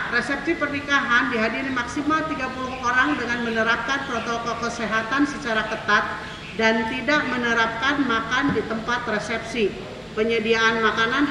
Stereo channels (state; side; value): identical; both; correlation 1.00